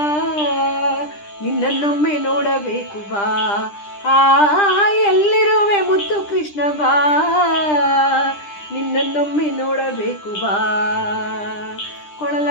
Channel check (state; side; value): late; right; 10 ms